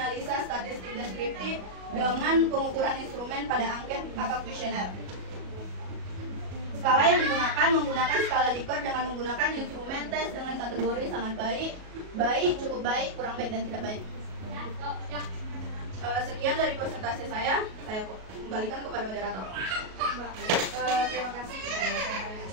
statistik deskriptif dengan pengukuran instrumen pada angket atau kuesioner. Skala yang digunakan menggunakan skala Likert dengan menggunakan instrumen tes dengan kategori sangat baik, baik, cukup baik, kurang baik, dan tidak baik. Sekian dari presentasi saya kembalikan kepada moderator. Terima kasih kepada Saudara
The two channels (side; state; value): left; late; 37 ms